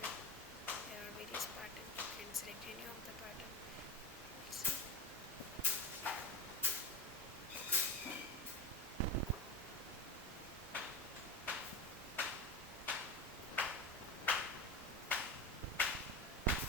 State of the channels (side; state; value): both; normal; correlation 0.24